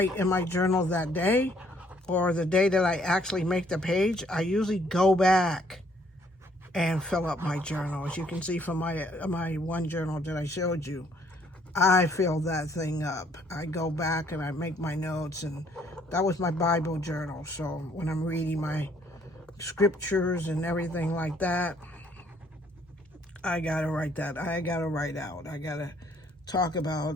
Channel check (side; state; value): both; normal; correlation 0.65